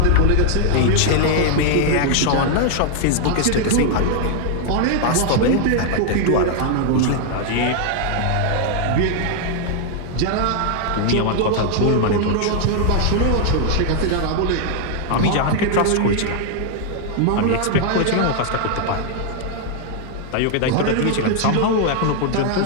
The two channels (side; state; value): both; different; correlation 0.00